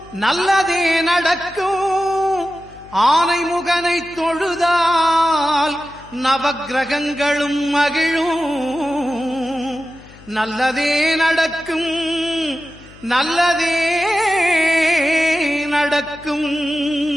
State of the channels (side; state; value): left; noise; hum, 22 dB below the sound